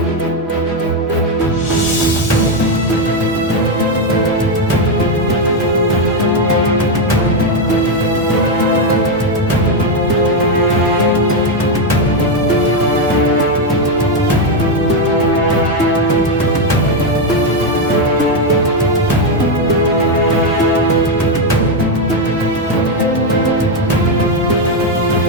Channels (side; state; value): both; normal; correlation 0.05